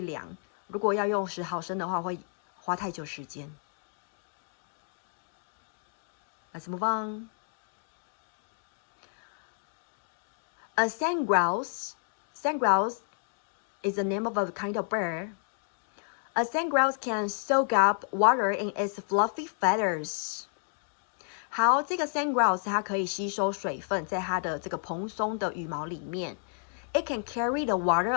量，如果要用10毫升的话，会花太久时间。Let's move on. A sand grouse is the name of a kind of bird. A sandgrouse can soak up water in its fluffy feathers. 好，这个 sandgrouse 它可以吸收水分，在它的这个蓬松的羽毛里面。It can carry the water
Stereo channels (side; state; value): right; silent; 57 dB below the other